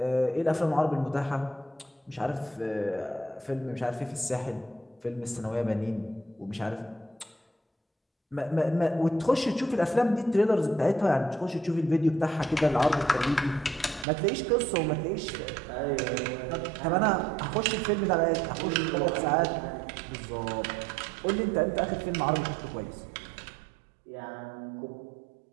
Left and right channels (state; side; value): drops out; left; at 14.1 s